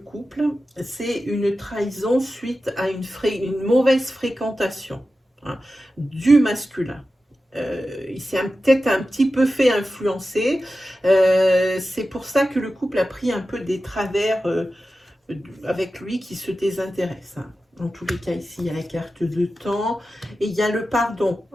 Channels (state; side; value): normal; both; correlation 0.93